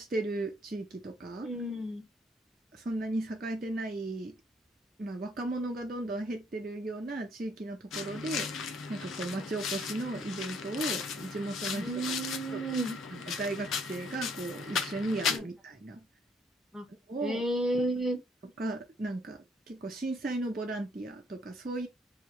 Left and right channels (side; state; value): both; normal; correlation 0.65